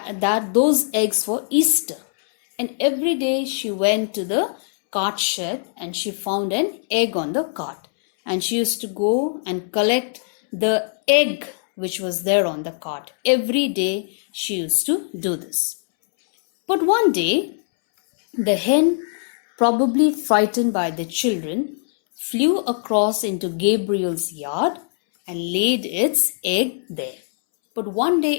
eggs for Easter. And every day she went to the cart shed and she found an egg on the cart. And she used to go and collect the egg which was there on the cart. Every day she used to do this. But one day, the hen, probably frightened by the children, flew across into Gabriel's yard and laid its egg there. But one day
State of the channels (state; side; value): silent; right; 65 dB below the other